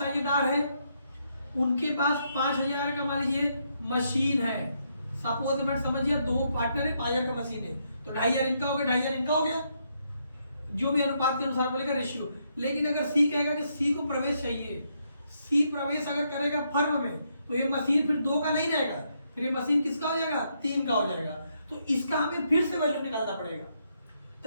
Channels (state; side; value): inverted; both; correlation -0.76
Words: है, उनके पास 5,000 का मान लीजिए मशीन है। सपोज मत समझिए दो पार्टनर है, 5,000 का मशीन है, तो 2,500 इनका हो गया, 2,500 इनका हो गया, जो भी अनुपात के अनुसार बोलेगा रेशियो। लेकिन अगर सी कहेगा कि सी को प्रवेश चाहिए, सी प्रवेश अगर करेगा फर्म में, तो ये मशीन फिर 2 का नहीं रहेगा, फिर ये मशीन किसका हो जाएगा, 3 का हो जाएगा। तो इसका हमें फिर से वैल्यू निकालना पड़ेगा।